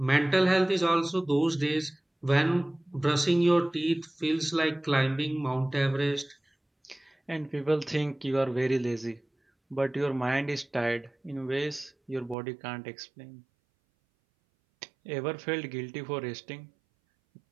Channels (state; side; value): drops out; left; at 12.4 s